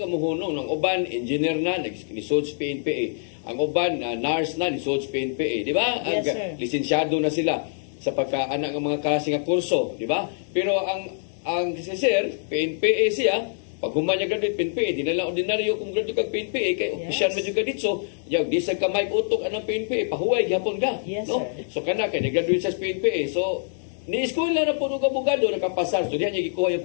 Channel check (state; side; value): silent; right; digital silence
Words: muhunong ng uban engineer na naglisod sa PNPA. Ang uban nurse na lisod sa PNPA, di ba? Yes, sir. Lisensyado na sila sa pagkaanak ng mga klase nga kurso, di ba? Pero ang si sir, PNPA siya, pag humanya graduate PNPA, di na lang ordinaryo kung graduate kag PNPA, kay opisyal man jud ka dito. Yaw, di sa kamay utok anang PNPA, pahuway gyapon ka. Yes, no? sir. So kana kay graduate sa PNPA. So ni-school na po ng abogado, nakapasar. So diyan niya gikuha yung